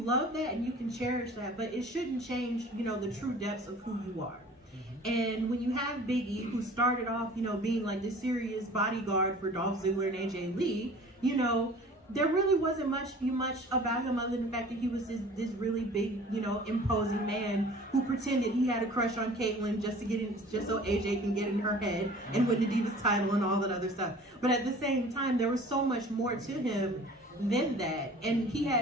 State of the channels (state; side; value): normal; both; correlation 0.46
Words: that and you can cherish that, but it shouldn't change, you know, the true depths of who you are. And when you have Big E, who started off, you know, being like this serious bodyguard for Dolph Ziggler and AJ Lee, you know, there really wasn't much about him other than the fact that he was this really big, you know, imposing man who pretended he had a crush on Caitlyn just so AJ can get in her head and win the Divas title and all that other stuff. But at the same time, there was so much more to him than that, and he